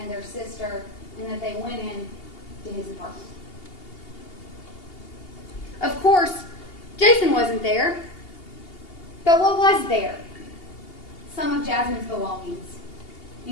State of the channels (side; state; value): right; late; 2.8 ms